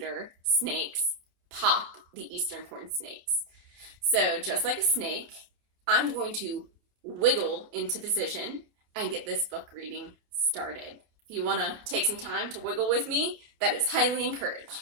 snakes, Pop, the eastern corn snakes. So just like a snake, I'm going to wiggle into position and get this book reading started. If you want to take some time to wiggle with me, that is highly encouraged.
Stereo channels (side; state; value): left; late; 28 ms